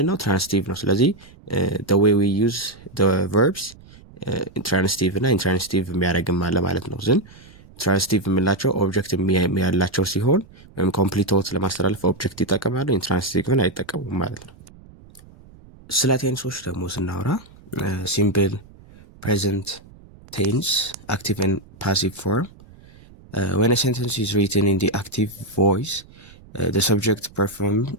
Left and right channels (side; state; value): right; noise; rumble, 23 dB below the sound